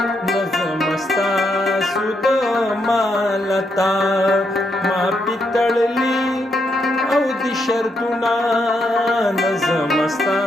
نظم ستاسو د مالتا ما پیتړلی او د شرطونه نظم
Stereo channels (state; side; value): normal; both; correlation 0.79